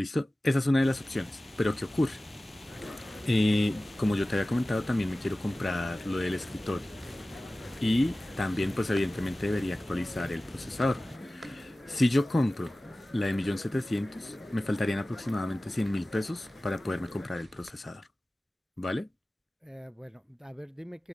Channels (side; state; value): both; normal; correlation 0.97